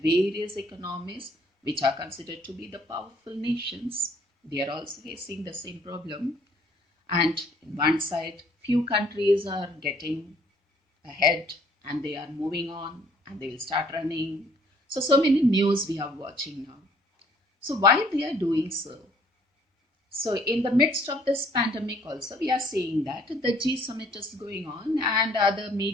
various economies, which are considered to be the powerful nations. They are also facing the same problem. And in one side, few countries are getting ahead and they are moving on and they will start running. So many news we are watching now. So why they are doing so? So in the midst of this pandemic also, we are seeing that the G summit is going on and other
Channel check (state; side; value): normal; both; correlation 0.61